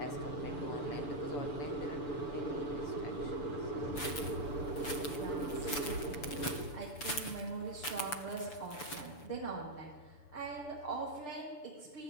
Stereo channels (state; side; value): late; right; 6.9 ms